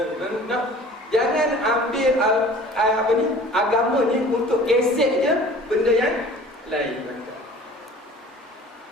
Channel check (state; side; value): normal; both; correlation 0.46